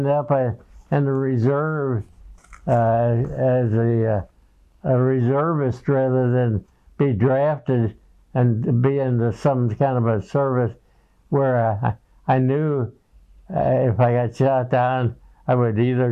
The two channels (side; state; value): both; identical; correlation 1.00